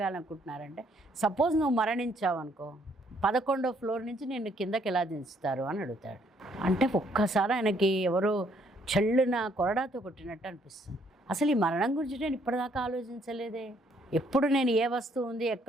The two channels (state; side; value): normal; both; correlation 0.67